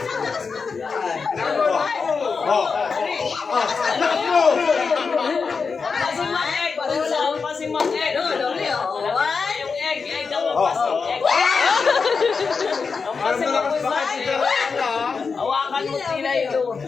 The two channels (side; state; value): right; quieter; 5.1 dB